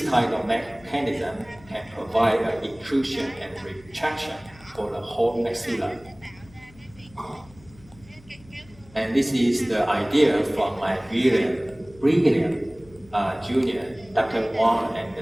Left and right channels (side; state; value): left; noise; hum, 24 dB below the sound